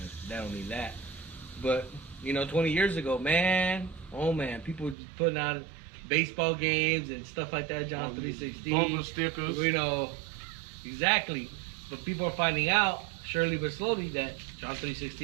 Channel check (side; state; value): left; drops out; at 5.0 s